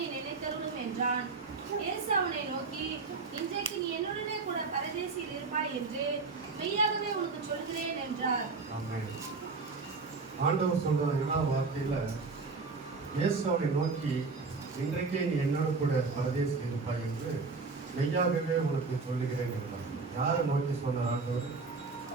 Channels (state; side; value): quieter; left; 4.3 dB